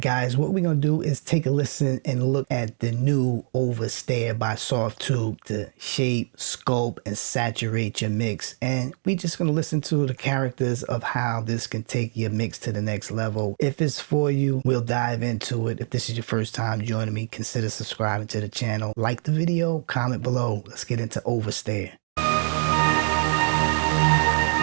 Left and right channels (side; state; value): left; silent; 62 dB below the other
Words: guys, what we're going to do is take a listen and look at the new Overstayer by Softube to shape, sculpt, and saturate your mix. And we're just going to listen to the characters of how this can take your mix to the next level. If it's for you, we'll dive into it. If this is your first time joining me, consider subscribing to the channel. Like the video, comment below. Let's get into Overstayer.